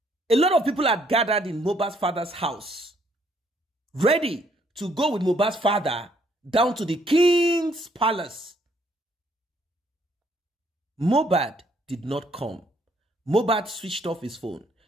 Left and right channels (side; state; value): both; normal; correlation 0.68